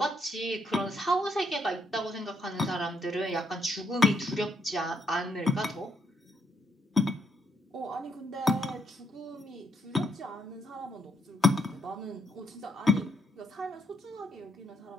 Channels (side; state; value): both; normal; correlation 0.74